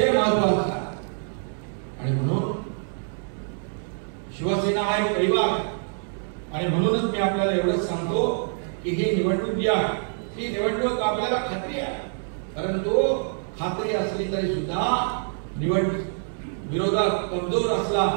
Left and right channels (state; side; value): silent; left; 59 dB below the other